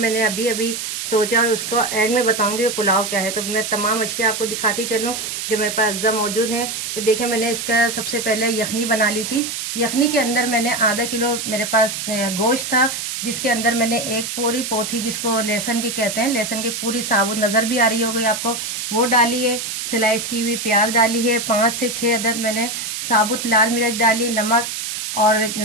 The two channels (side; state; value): right; noise; hiss, 5 dB below the sound